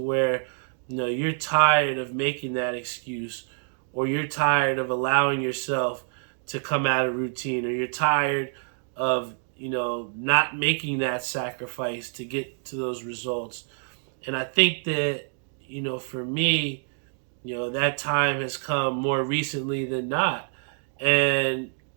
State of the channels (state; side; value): silent; left; 60 dB below the other